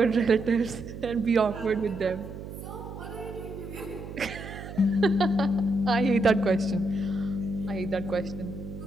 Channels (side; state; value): right; noise; hum, 11 dB below the sound